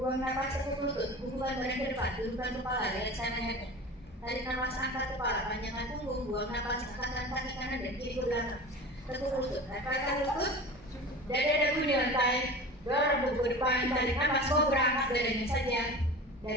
nafas, tekuk lutut, bukukan badan ke depan, tegukkan kepala, rilekskan lehernya. Tarik nafas, angkat kepala, panjangkan punggung. Buang nafas, angkatkan kaki kanan dan kiri ke belakang. Tekuk lutut, tempelkan lutut, dada dagu di lantai, dorong tubuh ke depan. Tarik nafas, kobra, angkat dadanya saja,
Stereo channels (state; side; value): normal; both; correlation 0.35